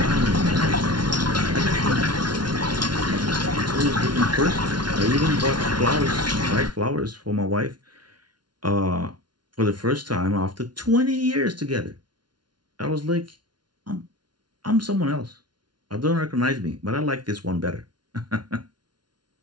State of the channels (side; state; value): left; late; 0.70 ms